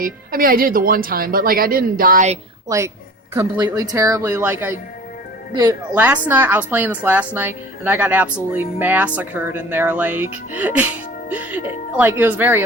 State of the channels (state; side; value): normal; both; correlation 0.41